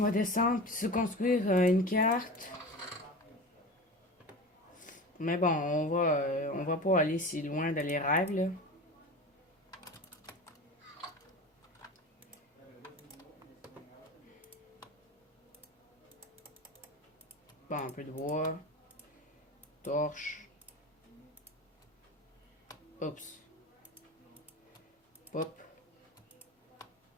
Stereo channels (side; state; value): both; normal; correlation 0.32